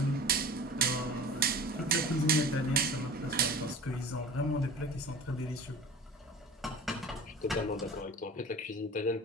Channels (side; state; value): both; normal; correlation 0.39